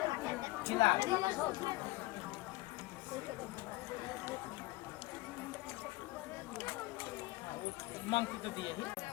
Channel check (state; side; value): quieter; right; 20.5 dB